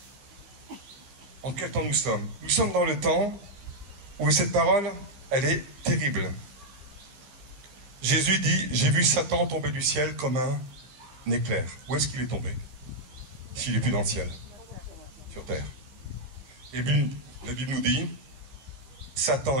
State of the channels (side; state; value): left; late; 16 ms